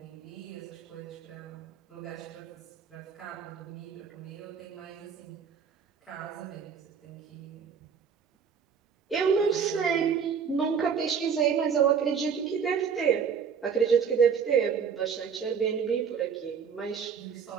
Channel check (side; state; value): left; quieter; 6.8 dB